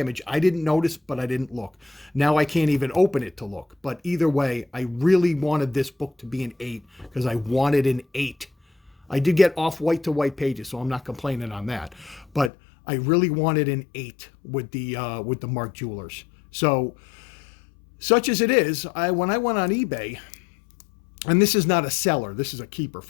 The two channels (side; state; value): right; drops out; at 12.5 s